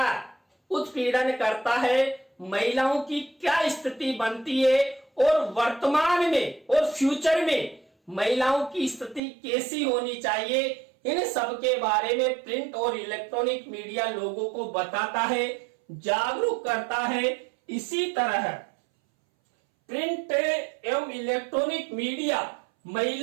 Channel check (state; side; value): drops out; left; at 9.2 s